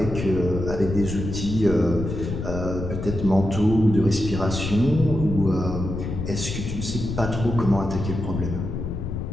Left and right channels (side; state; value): left; noise; rumble, 5 dB below the sound